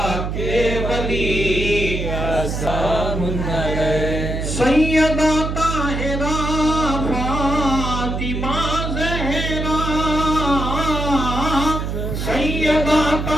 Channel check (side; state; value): right; noise; hum, 3 dB below the sound